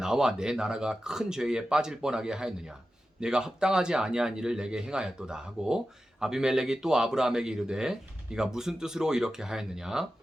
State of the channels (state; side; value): normal; both; correlation 0.93